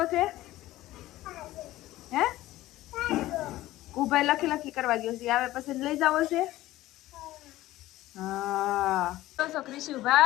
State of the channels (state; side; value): quieter; right; 16.1 dB